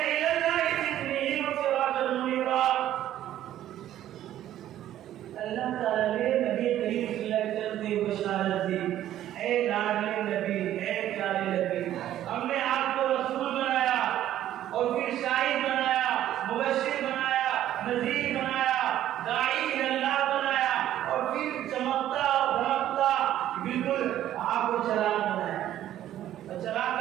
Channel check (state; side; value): quieter; left; 12.3 dB